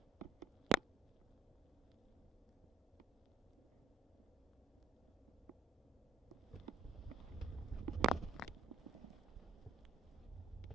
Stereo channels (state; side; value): normal; both; correlation 0.63